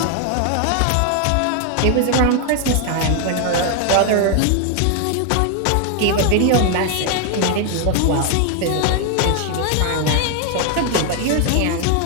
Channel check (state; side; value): different; both; correlation 0.00